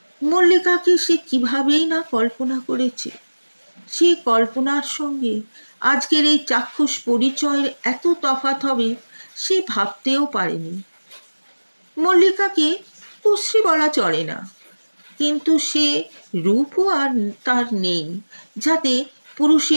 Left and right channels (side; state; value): both; inverted; correlation -1.00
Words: মল্লিকাকে সে কিভাবেই না কল্পনা করেছে। সে কল্পনার সঙ্গে আজকের এই চাক্ষুষ পরিচয়ের এত তফাৎ হবে সে ভাবতেও পারেনি। মল্লিকাকে কুশ্রী বলা চলে না, কিন্তু সে রূপও আর তার নেই যাতে